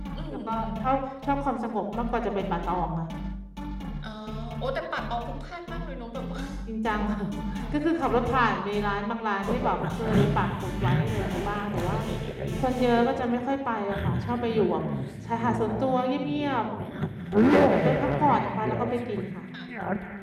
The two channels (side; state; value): both; identical; correlation 1.00